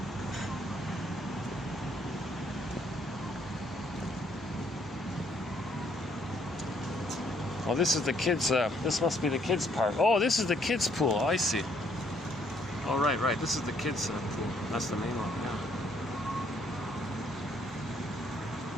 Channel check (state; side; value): normal; both; correlation 0.68